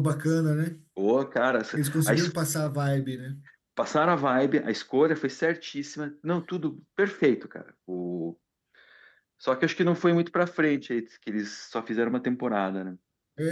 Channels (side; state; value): both; identical; correlation 1.00